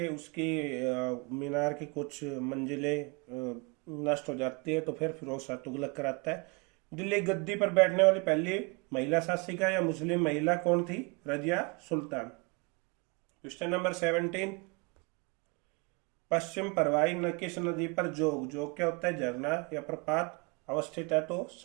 उसकी मीनार की कुछ मंजिलें नष्ट हो जाती है, तो फिर फिरोज शाह तुगलक कराता है। दिल्ली गद्दी पर बैठने वाली पहली महिला शासिका या मुस्लिम महिला कौन थी? रजिया सुल्तान। क्वेश्चन नंबर 17, पश्चिम परवाई न किस नदी पर जोग, जोग क्या होता है? झरना या प्रपात अवस्थित है? तो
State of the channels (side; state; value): left; quieter; 30.3 dB